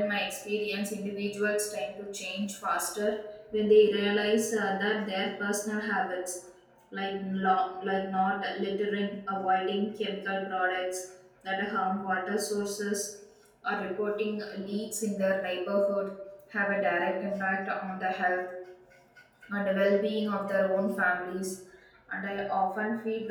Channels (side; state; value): both; identical; correlation 1.00